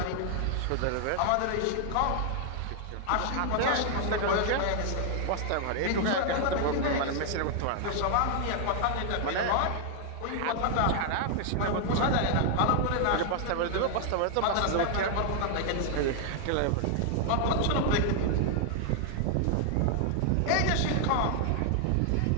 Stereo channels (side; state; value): both; different; correlation 0.00